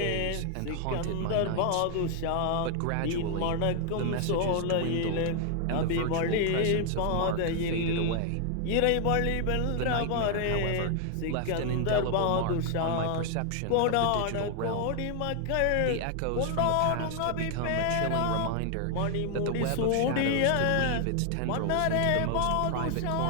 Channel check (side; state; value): both; different; correlation 0.00